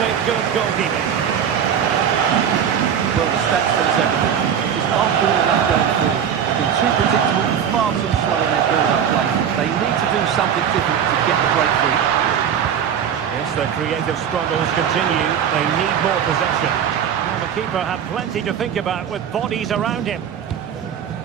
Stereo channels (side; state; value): left; quieter; 8.4 dB